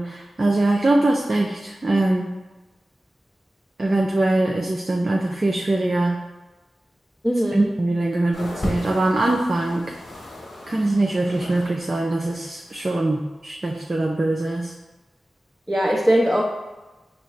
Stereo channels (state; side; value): normal; both; correlation 0.96